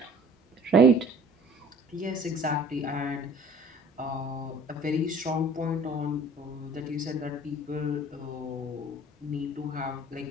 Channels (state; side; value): normal; both; correlation 0.50